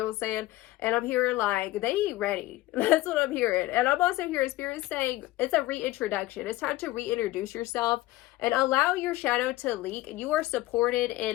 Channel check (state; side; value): quieter; right; 17.5 dB